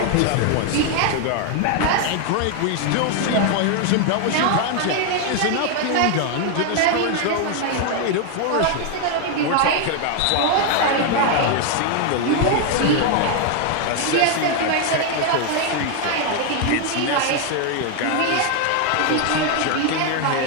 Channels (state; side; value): different; both; correlation 0.01